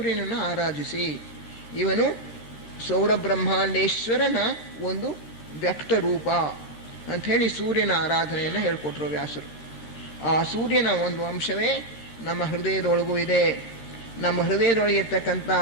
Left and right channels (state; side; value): late; right; 13 ms